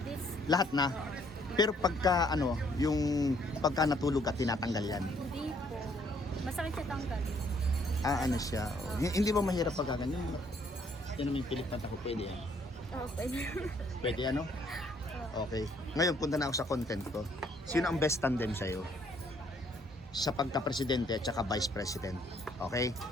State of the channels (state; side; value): normal; both; correlation 0.66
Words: This. Lahat na. Pero pagka yung pagka natulog at tinatanggal yan. Hindi po. Masakit siya tanggalin. Siya. Hindi ba mahirap pagka ganyan? Yan naman yung pilik mata ko, pwede yan. Pwede. Pwede Okay. Ngayon punta na ako sa content ko. Sino ang best tandem sa'yo? Sa pagka-presidente at saka vice president. Okay?